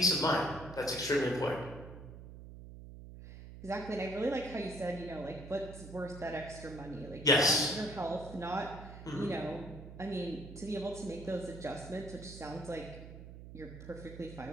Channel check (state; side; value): noise; right; hum, 13 dB below the sound